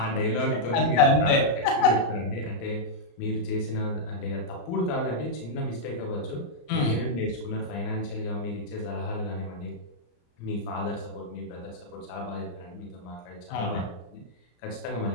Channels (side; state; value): right; late; 34 ms